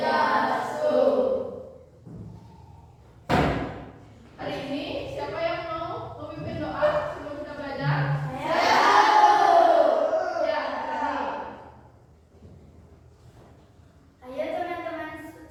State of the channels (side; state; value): both; identical; correlation 1.00